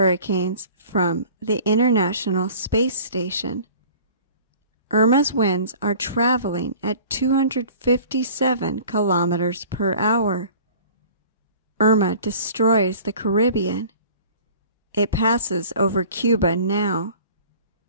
from the International Space Station. Irma's winds are traveling at 257 kilometers per hour. Irma destroys the Caribbean. It passes over Cuba now.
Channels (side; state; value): both; inverted; correlation -0.46